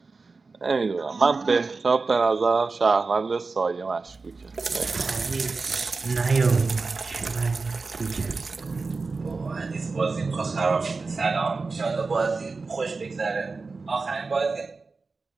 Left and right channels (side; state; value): left; quieter; 4.1 dB